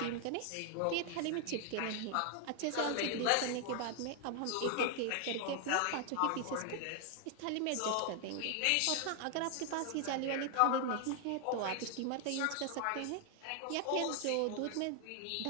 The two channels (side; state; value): both; different; correlation 0.00